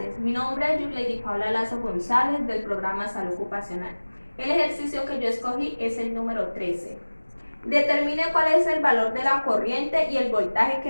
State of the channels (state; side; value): inverted; both; correlation -1.00